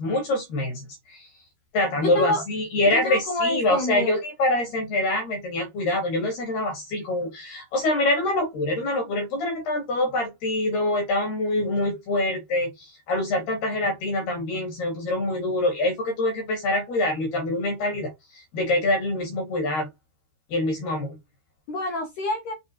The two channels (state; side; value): late; right; 13 ms